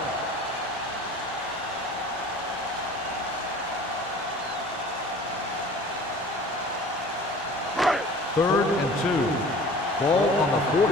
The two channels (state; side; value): normal; both; correlation 0.44